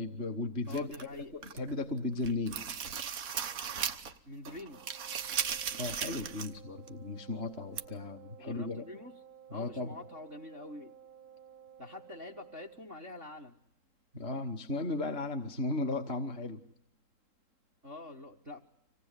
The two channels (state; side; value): late; left; 4.1 ms